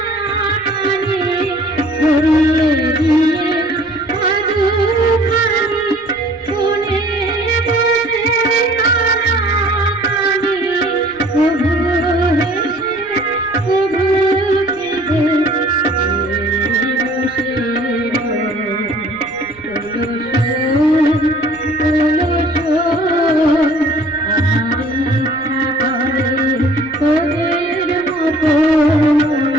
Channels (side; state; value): right; noise; rumble, 26 dB below the sound